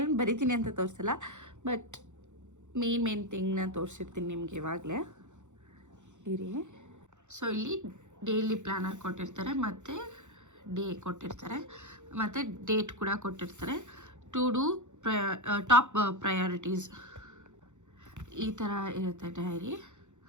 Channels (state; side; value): late; left; 0.84 ms